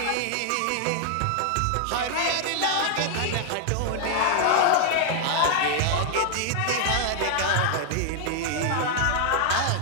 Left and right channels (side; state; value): both; different; correlation 0.00